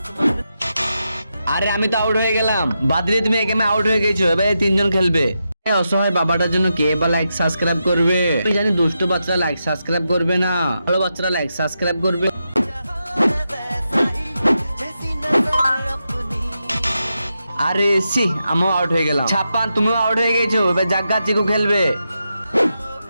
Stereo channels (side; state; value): both; inverted; correlation -0.87